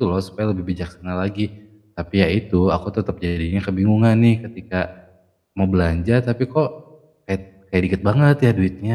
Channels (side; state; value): both; identical; correlation 1.00